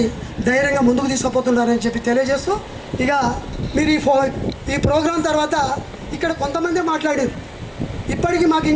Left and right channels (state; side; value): identical; both; correlation 1.00